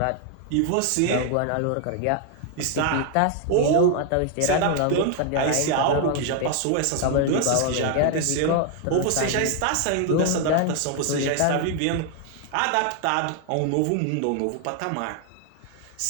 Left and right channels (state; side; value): different; both; correlation 0.00